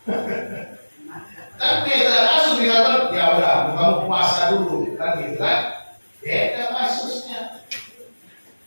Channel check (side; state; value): both; inverted; correlation -1.00